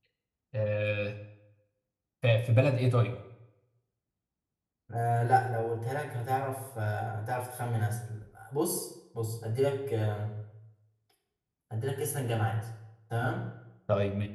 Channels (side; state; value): both; identical; correlation 1.00